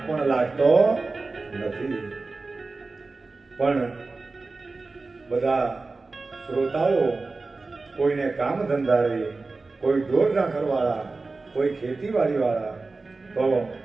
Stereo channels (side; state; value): left; quieter; 3.7 dB